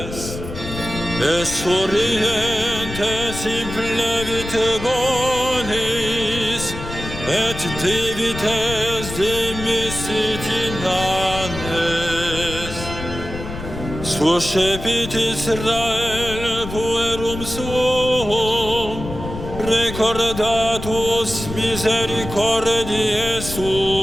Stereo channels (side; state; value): left; noise; rumble, 9 dB below the sound